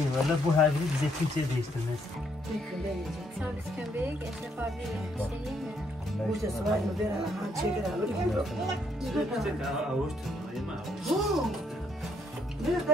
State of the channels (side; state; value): both; normal; correlation 0.71